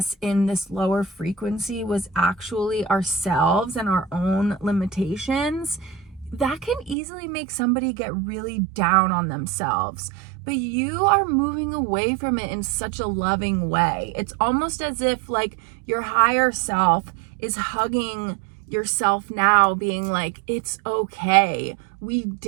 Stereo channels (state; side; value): drops out; left; at 7.0 s